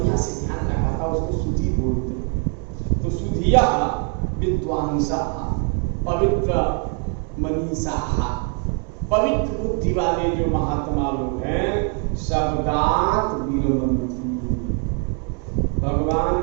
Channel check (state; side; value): quieter; left; 37.9 dB